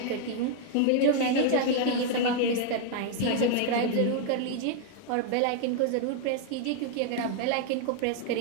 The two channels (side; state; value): both; different; correlation 0.00